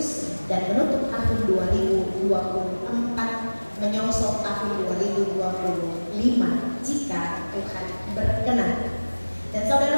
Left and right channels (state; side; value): inverted; both; correlation -1.00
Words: dan menutup tahun 2024, menyongsong tahun 2025 jika Tuhan berkenan. Dan